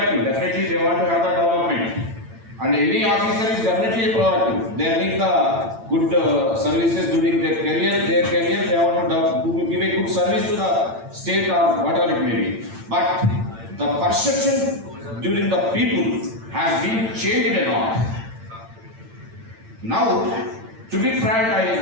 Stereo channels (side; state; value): left; late; 8.9 ms